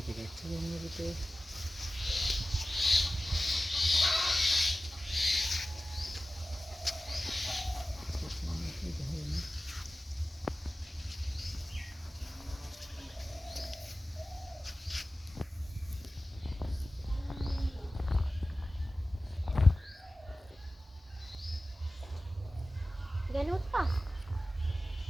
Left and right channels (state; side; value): normal; both; correlation 0.95